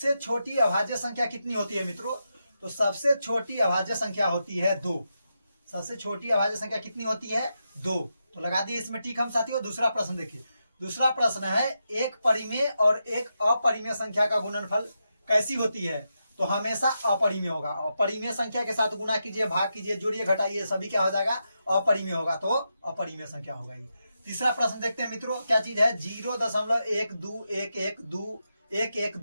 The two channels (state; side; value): inverted; both; correlation -0.86